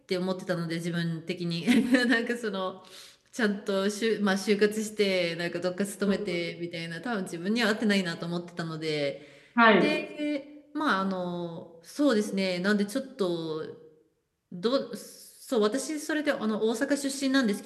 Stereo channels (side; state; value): both; identical; correlation 1.00